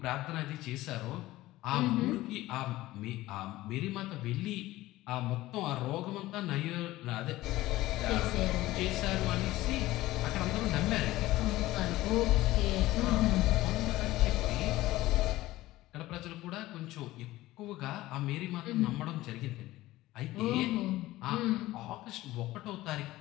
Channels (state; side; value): quieter; right; 17.1 dB